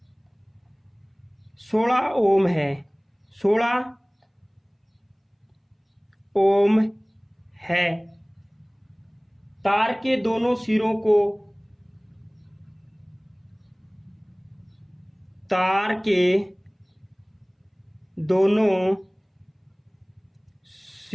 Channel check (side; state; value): both; identical; correlation 1.00